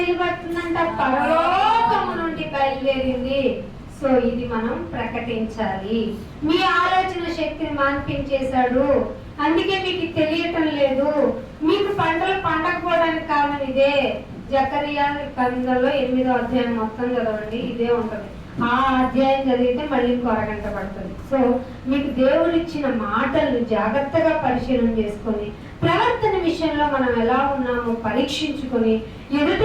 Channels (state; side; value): identical; both; correlation 1.00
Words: పరలోకము నుండి బయలుదేరింది. సో ఇది మనం ప్రకటించాలి. మీ ఆలోచన శక్తిని మాన్పించేశాడు, అందుకే మీకు తెలియటం లేదు. మీకు పంటలు పండకపోవడానికి కారణం ఇదే. జకరియా గ్రంథంలో 8వ అధ్యాయం మొత్తం చదవండి, ఇదే ఉంటుంది. ఆ అధ్యాయం చదివితే మళ్ళీ ఇంకో అరగంట పడుతుంది. సో మీకు దేవుడు ఇచ్చిన మాటలను జాగ్రత్తగా పరిశీలన చేసుకొని ప్రవర్తన విషయంలో మనం ఎలా ఉన్నామో పరీక్షించుకొని ఎదుట